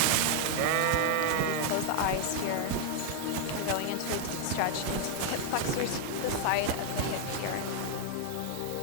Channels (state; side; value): different; both; correlation 0.00